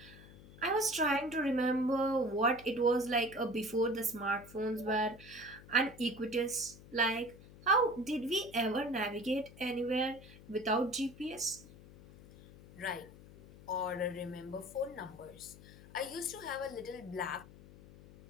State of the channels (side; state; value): left; noise; hum, 19 dB below the sound